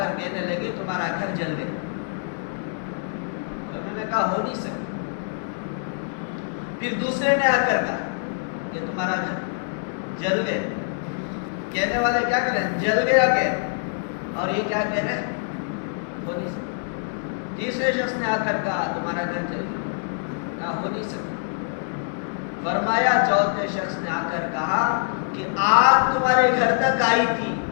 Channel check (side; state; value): right; silent; digital silence